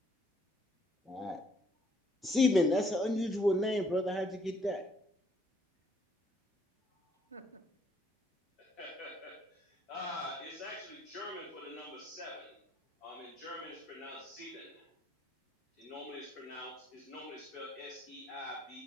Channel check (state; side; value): normal; both; correlation 0.68